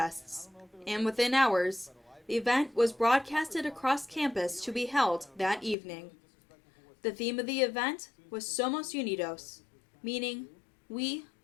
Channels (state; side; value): drops out; right; at 5.8 s